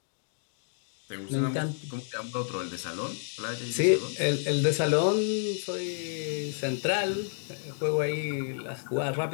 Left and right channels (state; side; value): silent; right; digital silence